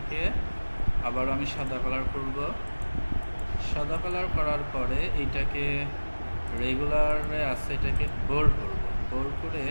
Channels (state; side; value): inverted; both; correlation -1.00